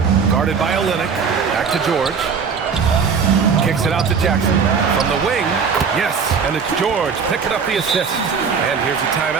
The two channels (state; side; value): quieter; left; 6.0 dB